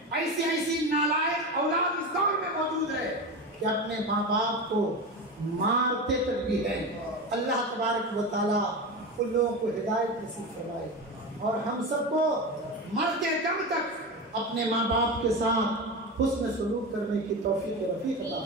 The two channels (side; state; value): both; normal; correlation 0.23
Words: ایسی نالائق اولاد اس دور میں موجود ہے کہ اپنے ماں باپ کو مارتے تک بھی ہیں۔ اللہ تبارک و تعالیٰ ان لوگوں کو ہدایت نصیب فرمائے اور ہم سب کو مرتے دم تک اپنے ماں باپ کے ساتھ حسن سلوک کرنے کی توفیق رفیق عطا